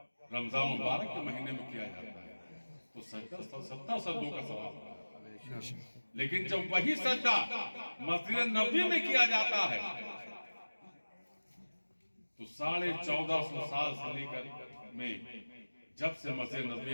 رمضان مبارک کے مہینے میں کیا جاتا ہے تو 70 سجدوں کا ثواب. لیکن جب وہی سجدہ مسجد نبوی میں کیا جاتا ہے تو 1450 سال سے لے کر میں جب سے مسجد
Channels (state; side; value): inverted; both; correlation -1.00